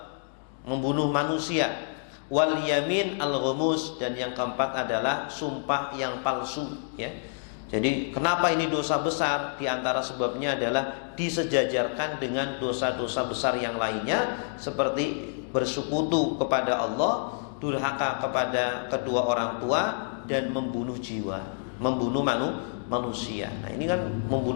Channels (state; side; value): silent; right; digital silence